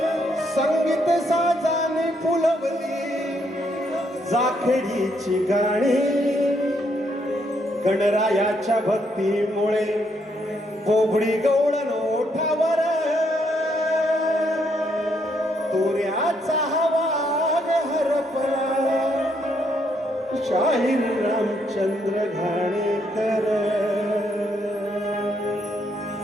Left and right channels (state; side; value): normal; both; correlation 0.74